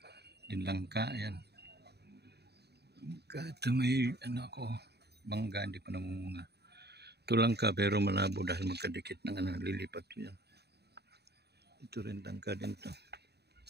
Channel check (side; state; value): left; late; 0.48 ms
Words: Din langka, yan. Ito may bangga, hindi pa namunga. Ito langka pero malabo dahil magkadikit ng lilipat yan. Ito rin langka din to.